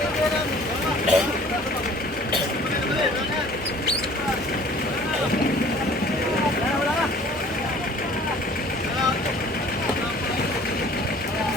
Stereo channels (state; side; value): normal; both; correlation 0.51